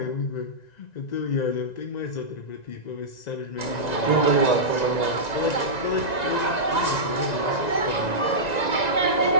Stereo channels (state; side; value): late; right; 1.9 ms